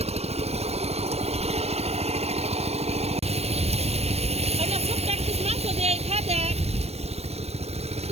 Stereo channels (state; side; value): late; left; 0.30 ms